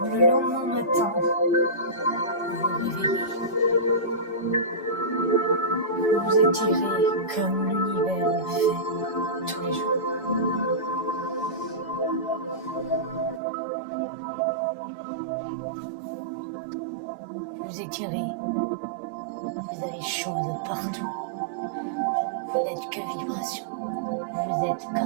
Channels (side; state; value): left; drops out; at 13.4 s